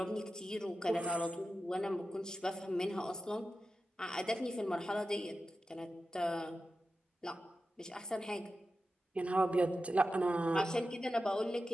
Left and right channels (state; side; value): normal; both; correlation 0.92